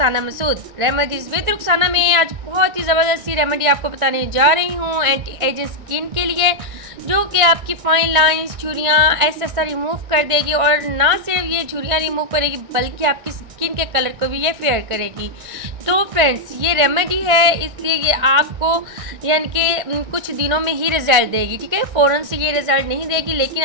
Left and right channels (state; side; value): late; left; 1.6 ms